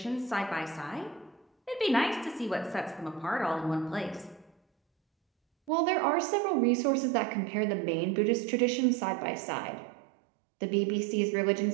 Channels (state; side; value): drops out; left; at 5.7 s